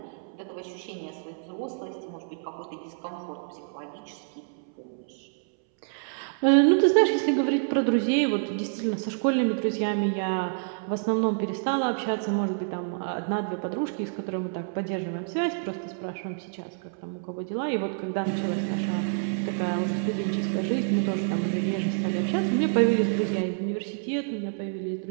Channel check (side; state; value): left; silent; 59 dB below the other